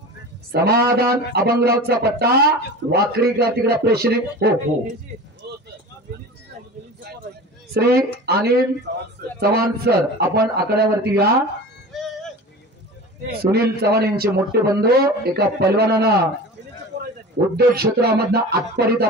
समाधान अभंगरावचा पट्टा, वाकरीकर तिकडे प्रेक्षणीय. हो हो, श्री अनिल चव्हाण सर आपण आकड्यावरती या. सुनील चव्हाण यांचे मोठे बंधू, एका पैलवानानं उद्योग क्षेत्रामधनं आत्तापर्यंत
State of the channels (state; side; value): normal; both; correlation 0.34